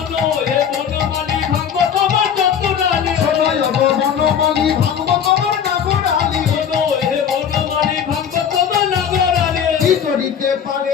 हे बनमाली भागवत তোমার চতুরালি সোনো यो बनमाली भागवत তোমার নাগরালি सोनो हे बनमाली भागवत তোমার নাগরালি কি করিতে পারে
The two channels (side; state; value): right; quieter; 8.1 dB